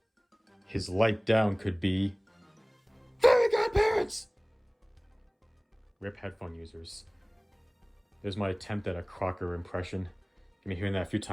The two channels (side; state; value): both; identical; correlation 1.00